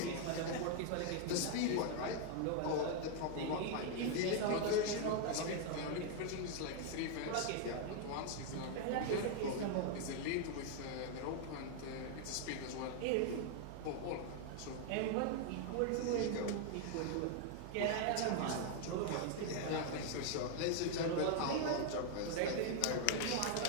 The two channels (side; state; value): both; different; correlation 0.00